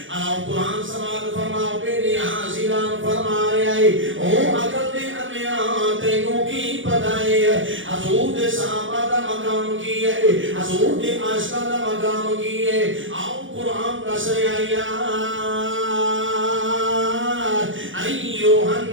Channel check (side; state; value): left; late; 0.56 ms